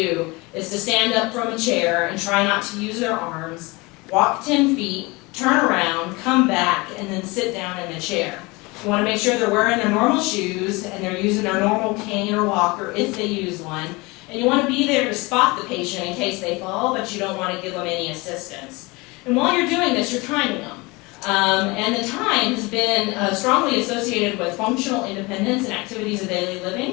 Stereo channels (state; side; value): quieter; right; 24.7 dB